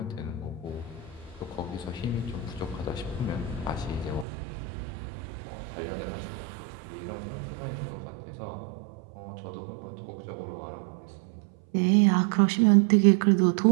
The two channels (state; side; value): drops out; left; at 4.2 s